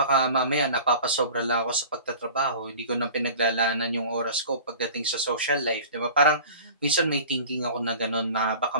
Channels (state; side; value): inverted; both; correlation -0.41